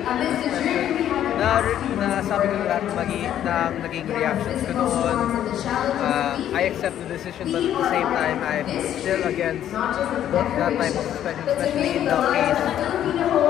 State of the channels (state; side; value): quieter; right; 11.0 dB